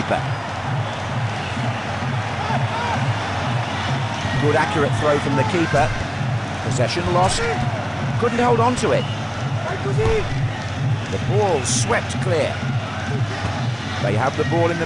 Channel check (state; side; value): identical; both; correlation 1.00